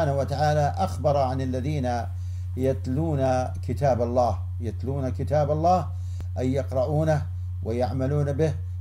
وتعالى أخبر عن الذين يتلون كتاب الله أي يقرؤونه ويعملون به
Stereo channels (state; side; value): identical; both; correlation 1.00